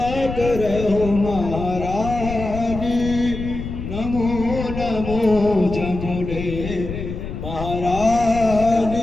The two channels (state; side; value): noise; left; rumble, 7 dB below the sound